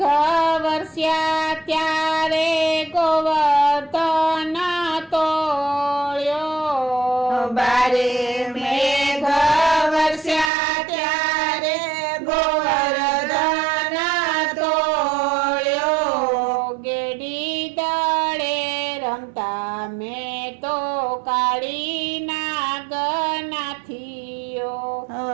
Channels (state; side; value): drops out; left; at 10.5 s